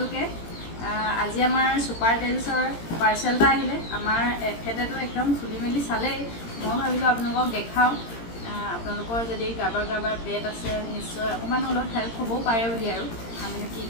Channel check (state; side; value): late; right; 18 ms